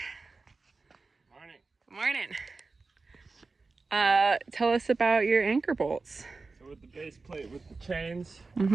Morning. Good morning. Tell us about your anchor bolts. So with the base plate with the chains,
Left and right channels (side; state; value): left; quieter; 3.9 dB